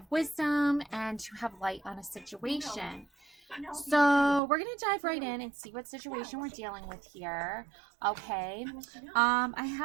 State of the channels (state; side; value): drops out; left; at 4.4 s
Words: wisdom and to have light on a situation. So we're gonna dive right in and see what situation we're dealing with here. Okay. I